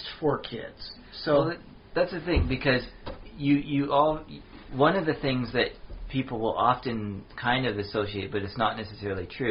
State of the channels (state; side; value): identical; both; correlation 1.00